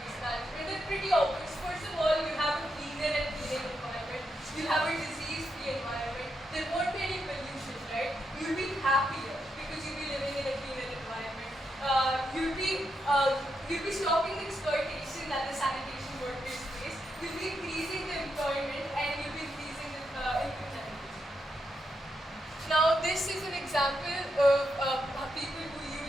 management? They're pretty obvious. First of all, you have a cleaner and cleaner environment. You have a disease-free environment. There won't be any pollution, right? You'll be happier because you'll be living in a cleaner environment. You'll be stopping the exploitation that the sanitation workers face. You'll be increasing the employment, and you'll be increasing the income generation. Now, this is an example of people who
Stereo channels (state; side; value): normal; both; correlation 0.83